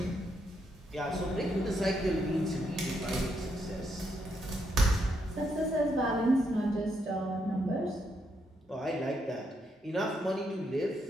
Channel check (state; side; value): normal; both; correlation 0.78